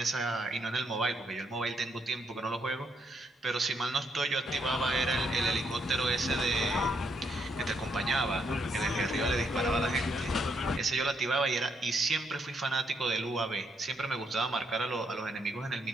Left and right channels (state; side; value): normal; both; correlation 0.75